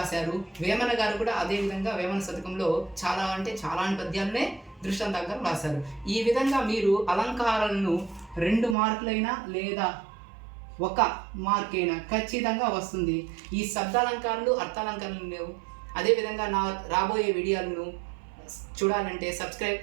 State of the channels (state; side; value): drops out; left; at 8.8 s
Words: వేమన గారు కూడా అదేవిధంగా వేమన శతకంలో చాలా పద్యాలనే దృష్టాంత అలంకారం రాశారు. ఈ విధంగా మీరు అలంకారాలను 2 మార్కులైనా లేదా 1 మార్క్ అయినా ఖచ్చితంగా వస్తుంది. ఈ శబ్దాలంకారాలు అర్థాలంకారాలు లేవు. అదేవిధంగా నా రాబోయే వీడియోలను చూడాలంటే